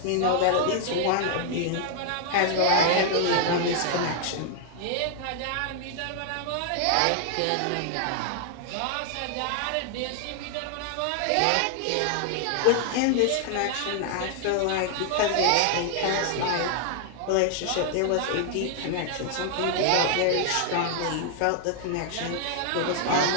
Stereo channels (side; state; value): both; different; correlation 0.00